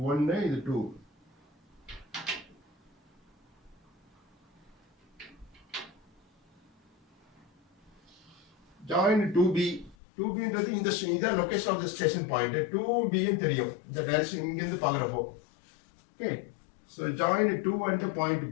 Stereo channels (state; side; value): drops out; right; at 10.0 s